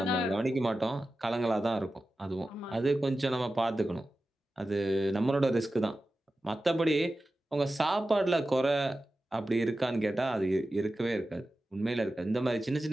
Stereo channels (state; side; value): normal; both; correlation 0.94